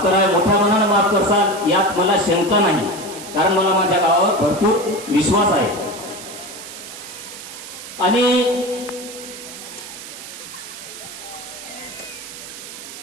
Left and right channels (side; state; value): right; noise; hiss, 12 dB below the sound